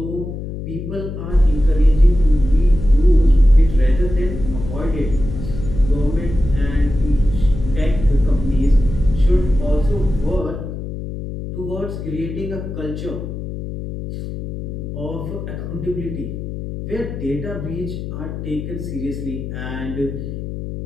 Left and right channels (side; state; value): left; noise; hum, 7 dB below the sound